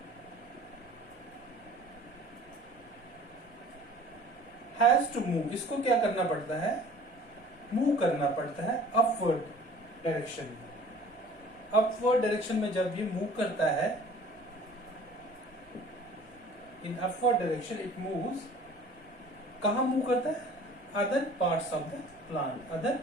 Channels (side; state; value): both; normal; correlation 0.48